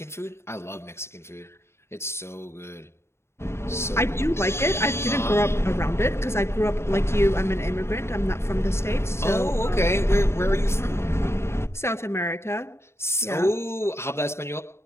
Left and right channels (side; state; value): right; late; 0.13 ms